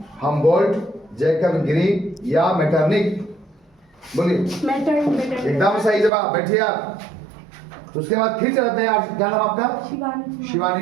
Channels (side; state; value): left; drops out; at 6.1 s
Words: Humboldt, Jacob green या मेटरनिख। बोलिए। एकदम सही जवाब। बैठिए आप। तो उसके बाद फिर चलते हैं। क्या नाम आपका? शिवानी शिवानी